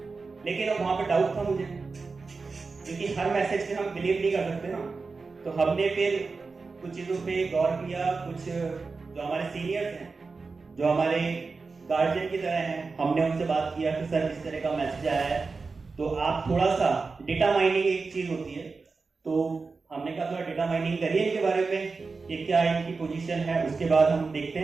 लेकिन अब वहाँ पे डाउट था मुझे, क्योंकि हर मैसेज पे हम बिलीव नहीं कर सकते ना। तो हमने फिर कुछ चीज़ों पे गौर किया, कुछ जो हमारे सीनियर्स हैं, जो हमारे गार्जियन की तरह हैं, हमने उनसे बात किया कि सर इस तरह का मैसेज आया है, तो आप थोड़ा सा डेटा माइनिंग एक चीज़ होती है, तो हमने कहा थोड़ा डेटा माइनिंग करिए इनके बारे में कि क्या इनकी पोजीशन है, उसके बाद हम देखते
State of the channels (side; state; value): left; quieter; 4.3 dB